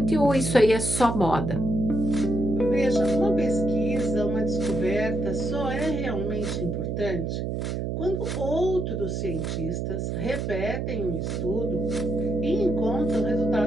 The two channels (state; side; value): noise; right; hum, 2 dB below the sound